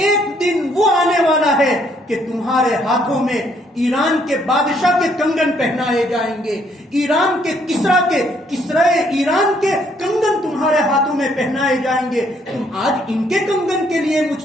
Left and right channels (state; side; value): normal; both; correlation 0.68